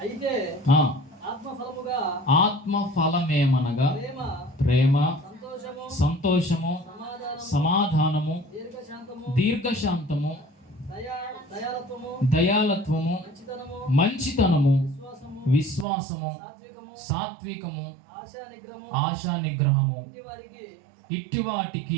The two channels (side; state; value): left; drops out; at 15.9 s